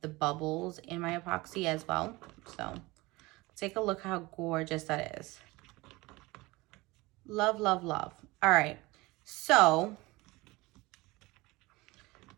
the bubbles in my epoxy as well. So take a look how gorgeous that is. Love, love, love. All right, so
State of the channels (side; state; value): left; quieter; 21.9 dB